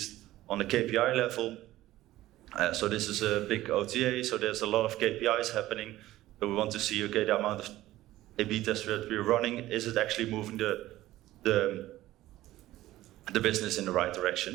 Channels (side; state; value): left; quieter; 15.6 dB